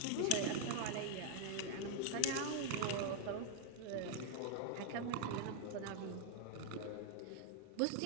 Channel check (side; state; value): both; different; correlation 0.00